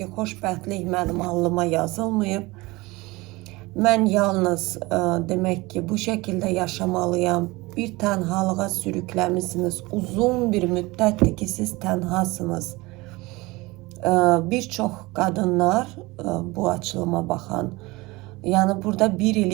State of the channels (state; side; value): quieter; left; 22.2 dB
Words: xoşbəxtlik mənim alnıma yazılmayıb. Mən yalnız demək ki, bu şəkildə yaşamalıyam. Bir tənhalığa sürükləmisiniz. Uzun bir müddətdir ki, siz tənhasınız. Bir çox qadınlar bu açılıma baxan, yəni burada 1 il,